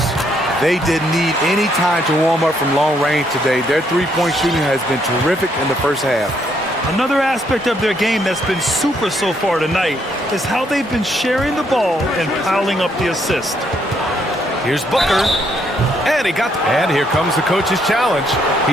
They didn't need any time to warm up from long range today. Their three-point shooting has been terrific in the first half. Another aspect of their game that's been super so far tonight is how they've been sharing the ball and piling up the assist. Here's Booker. And here comes the coach's challenge.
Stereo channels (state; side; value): normal; both; correlation 0.72